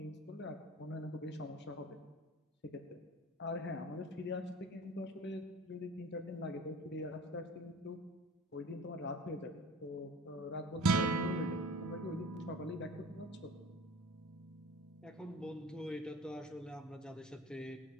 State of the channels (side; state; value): both; normal; correlation 0.41